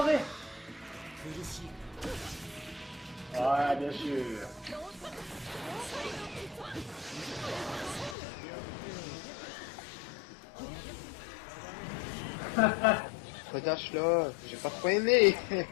Ouais, bien sûr. Redash là, j'ai pas trop aimé.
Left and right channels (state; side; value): drops out; right; at 8.2 s